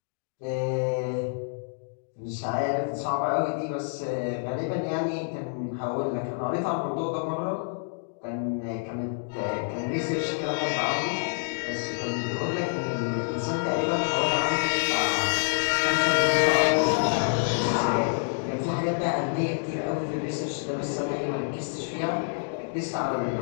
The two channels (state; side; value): silent; right; digital silence